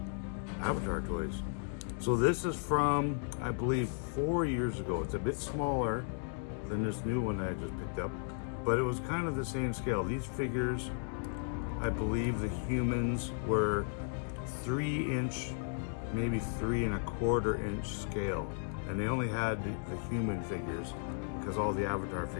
Avatar toys. So this is from, I believe, 4 years ago. It's a bit smaller than this new one that I just picked up, but it was kind of the same scale. These figures, I believe the humans were 3-inch, maybe 3.25 inch scale. And they only had the human figures because all the Avatar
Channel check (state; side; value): silent; right; 54 dB below the other